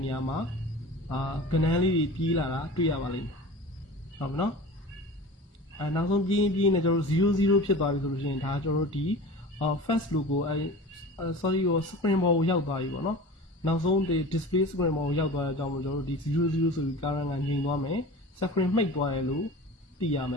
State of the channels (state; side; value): normal; both; correlation 0.36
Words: နေရာမှာကဏ္ဍလေးတွေပြေးလာတာတွေ့ရပါလိမ့်မယ်ဟုတ်ပြီနော်နောက်ဆုံးပြေးနေကျွန်တော်တို့00ဖြစ်သွားပြီဆိုလို့ရှိရင်ဒါကျွန်တော်တို့ဒီ first logo sorry spring ball ကိုရောက်သွားပြီပေါ့နော် နောက်ဆုံးဒီ display screen မှာရောက်သွားတဲ့အကြောင်းမို့ကျွန်တော်တို့ဒီ00ဆိုပြီး current ကငြိမ်သွားမယ် screen မှိတ်သွားတယ်လို့သိရမယ